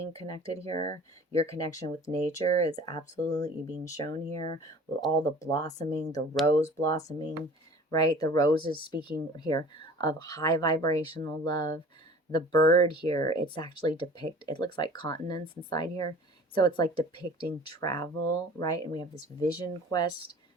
connected here? Your connection with nature is absolutely being shown here with all the blossoming, the rose blossoming, right? The rose is speaking here of high vibrational love. The bird here, it's actually it looks like continents inside here. So it's like depicting travel, right? And we have this vision quest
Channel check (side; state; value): both; normal; correlation 0.45